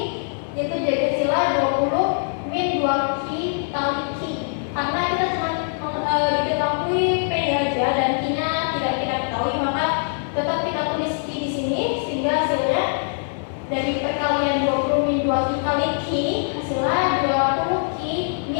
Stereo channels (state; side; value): silent; right; 64 dB below the other